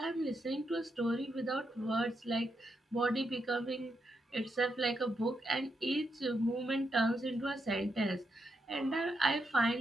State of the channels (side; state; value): both; normal; correlation 0.83